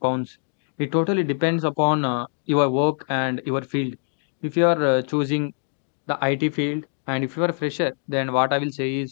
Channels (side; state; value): right; silent; 63 dB below the other